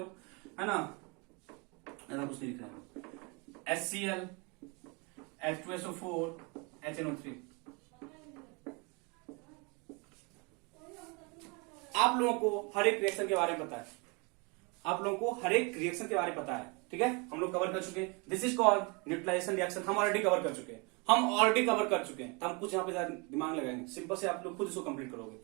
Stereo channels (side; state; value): left; quieter; 30.7 dB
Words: है ना, ऐसा कुछ नहीं लिख रहा है। HCl, H2SO4, HNO3। आप लोगों को हर एक रिएक्शन के बारे में पता है, ठीक है? हम लोग कवर कर चुके हैं। This is called neutralization reaction. हम ऑलरेडी कवर कर चुके हैं, तो हम कुछ यहाँ पे दिमाग लगाएंगे। सिंपल से आप लोग खुद इसको कंप्लीट करोगे।